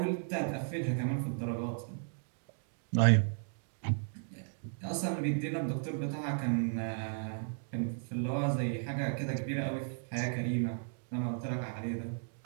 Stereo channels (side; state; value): left; silent; digital silence